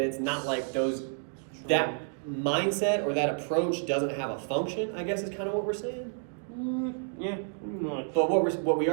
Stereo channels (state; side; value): silent; left; 58 dB below the other